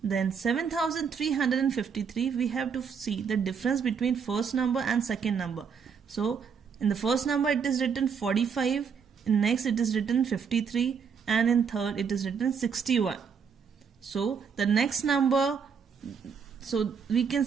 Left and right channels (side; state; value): left; quieter; 6.4 dB